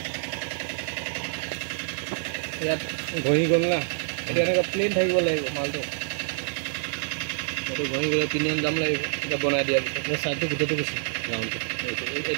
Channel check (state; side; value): silent; left; 60 dB below the other